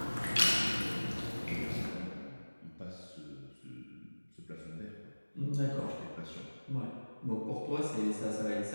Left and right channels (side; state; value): both; inverted; correlation -1.00